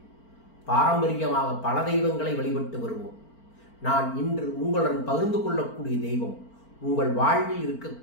பாரம்பரியமாக பல தெய்வங்களை வழிபட்டு வருவோம். நான் இன்று உங்களுடன் பகிர்ந்து கொள்ளக்கூடிய தெய்வம் உங்கள் வாழ்வில்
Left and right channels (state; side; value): late; right; 4.4 ms